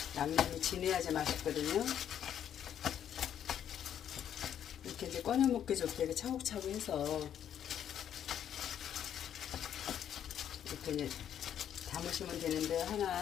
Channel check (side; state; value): right; quieter; 9.7 dB